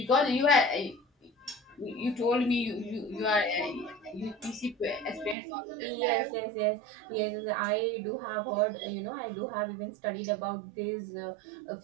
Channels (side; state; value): left; drops out; at 5.4 s